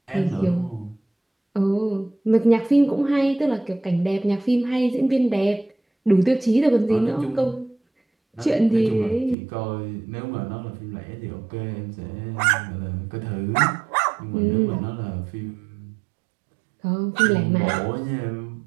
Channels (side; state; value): left; drops out; at 9.3 s